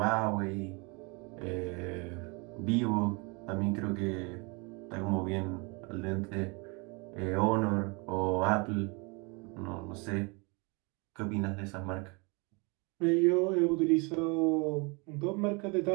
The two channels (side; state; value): left; quieter; 30.0 dB